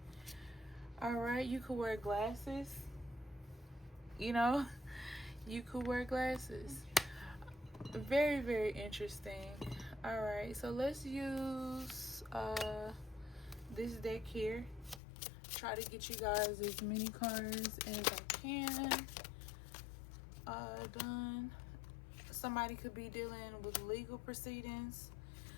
All right. You could wear glasses. You know, you could wear glasses. Very, very interesting. All right. So let's use this deck here. Try to get you guys as many cards as I can done. Somebody could be dealing with legal proceedings.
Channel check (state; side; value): drops out; right; at 15.0 s